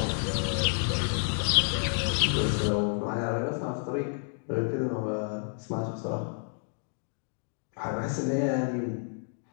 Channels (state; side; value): silent; right; 58 dB below the other